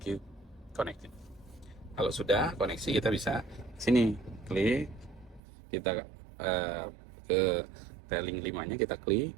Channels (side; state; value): left; drops out; at 5.4 s